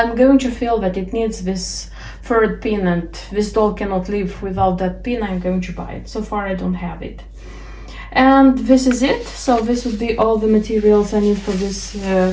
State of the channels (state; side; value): identical; both; correlation 1.00